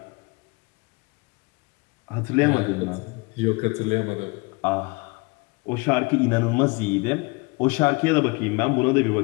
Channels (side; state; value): right; quieter; 27.1 dB